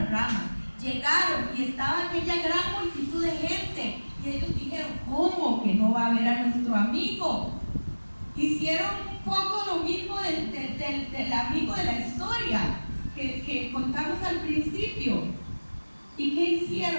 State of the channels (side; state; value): both; inverted; correlation -1.00